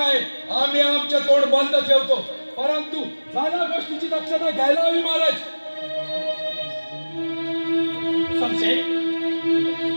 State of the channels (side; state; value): both; inverted; correlation -1.00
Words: आम्ही आमचे तोंड बंद ठेवतो, परंतु झाल्या गोष्टीची दक्षता घ्यायला हवी महाराज. संशय,